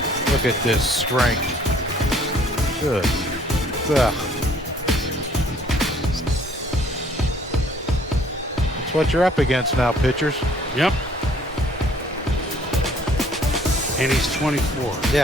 Look at this strength. Good. Ugh. That's what you're up against now, pitchers. Yep. And he's 24.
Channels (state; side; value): normal; both; correlation 0.59